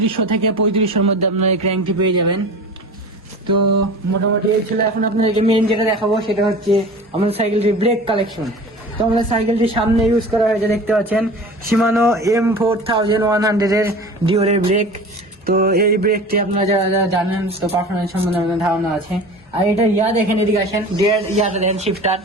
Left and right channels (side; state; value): both; normal; correlation 0.37